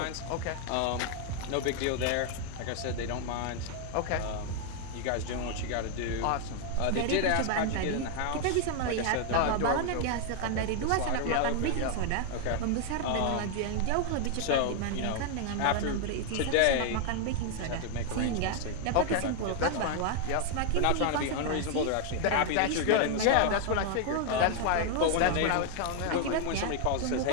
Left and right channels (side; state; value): both; different; correlation 0.00